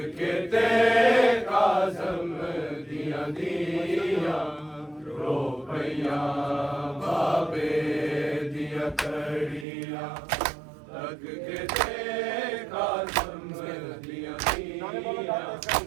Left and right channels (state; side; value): drops out; left; at 9.7 s